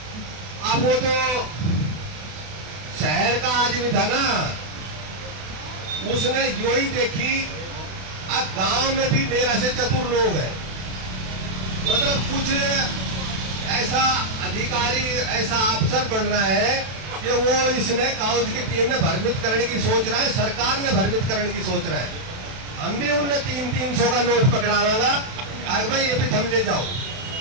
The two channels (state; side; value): late; left; 32 ms